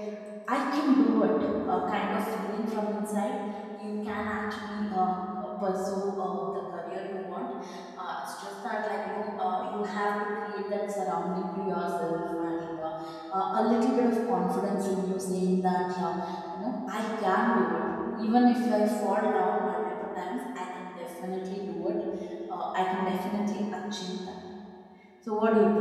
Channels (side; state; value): both; identical; correlation 1.00